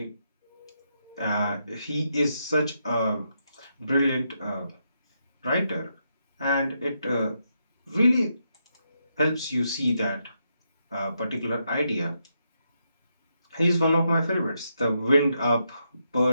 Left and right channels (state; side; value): inverted; both; correlation -0.81